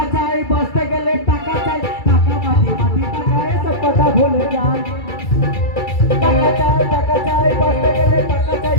চাই, বাঁচতে গেলে টাকা চাই। টাকা মাটি মাটি টাকা, এসব কথা ভুলে যান। টাকা চাই, বাঁচতে গেলে টাকা চাই।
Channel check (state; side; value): late; right; 2.3 ms